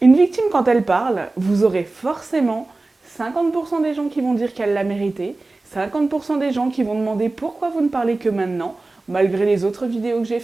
Une victime quand elle parle, vous aurez forcément 50% des gens qui vont dire qu'elle l'a mérité, 50% des gens qui vont demander pourquoi vous ne parlez que maintenant, malgré les autres vidéos que j'ai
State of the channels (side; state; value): left; quieter; 3.3 dB